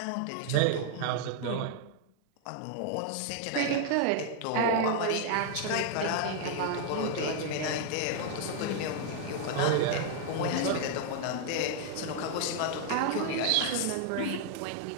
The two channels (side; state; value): both; different; correlation 0.00